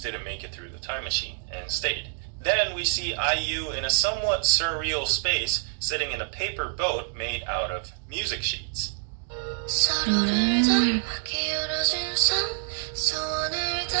make it through the time machine and stayed. Then we see IU in a somewhat surreal space, sitting in a paper boat made out of music sheets.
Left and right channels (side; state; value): left; silent; digital silence